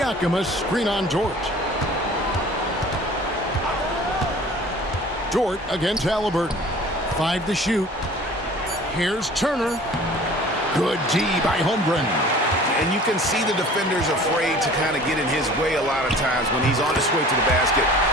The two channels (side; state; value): both; normal; correlation 0.46